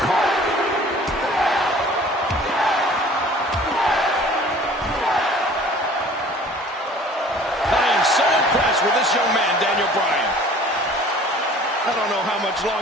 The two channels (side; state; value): both; normal; correlation 0.49